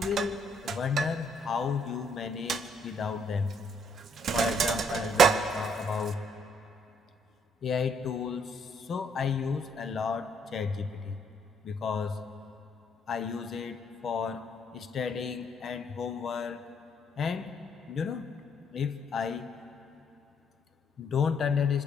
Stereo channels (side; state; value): both; normal; correlation 0.69